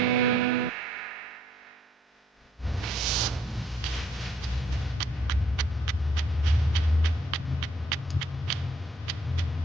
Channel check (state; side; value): normal; both; correlation 0.68